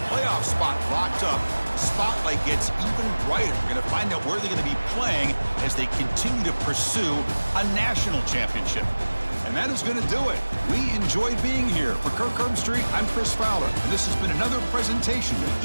playoff spot locked up, the spotlight gets even brighter. We're going to find out where they're going to be playing as they continue to pursue a national championship. And that is going to do it. We enjoyed being here. For Kirk Herbstreit, I'm Chris Fowler, and this has been another presentation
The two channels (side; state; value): both; inverted; correlation -1.00